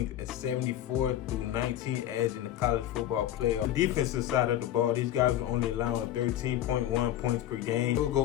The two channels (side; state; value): right; quieter; 12.3 dB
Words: a 74-19 edge in the college football playoff. The defensive side of the ball, these guys are only allowing 13.1 points per game. They will